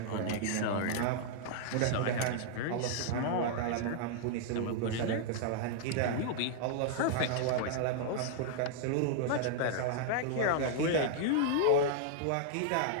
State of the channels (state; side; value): different; both; correlation -0.01